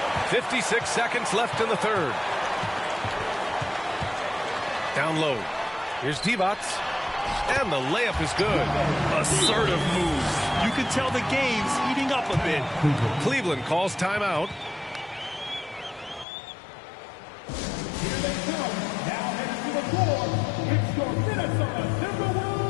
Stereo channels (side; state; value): right; drops out; at 16.2 s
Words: 56 seconds left in the third. Down low. Here's Divac. And the layup is good. Assertive moves. You can tell the game's heating up a bit. Cleveland calls timeout. Here they come. Now headed to the floor. It's your Minnesota